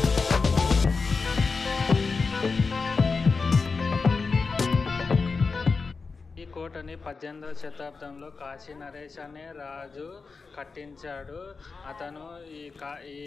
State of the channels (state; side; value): quieter; right; 4.5 dB